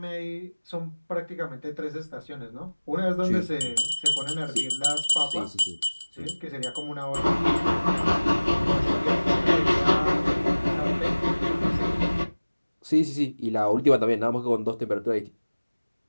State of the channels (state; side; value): inverted; both; correlation -1.00